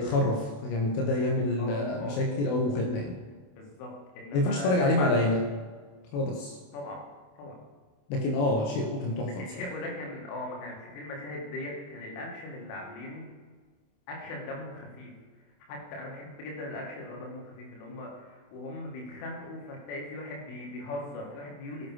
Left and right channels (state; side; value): late; right; 28 ms